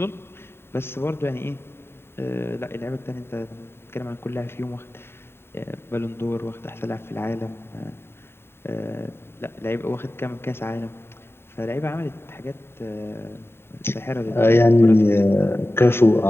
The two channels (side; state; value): right; late; 0.11 ms